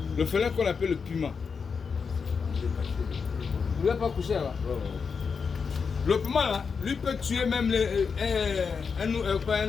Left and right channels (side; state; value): right; quieter; 5.6 dB